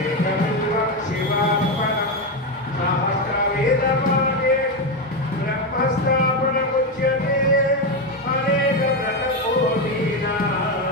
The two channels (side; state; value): both; normal; correlation 0.11